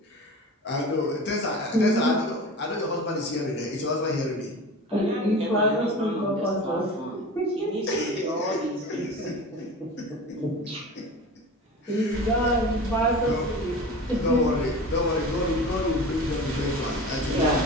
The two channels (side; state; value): both; normal; correlation 0.34